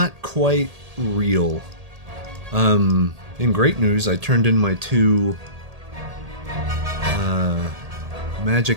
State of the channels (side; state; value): left; late; 1.8 ms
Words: quite real. In great news, I turned in my 2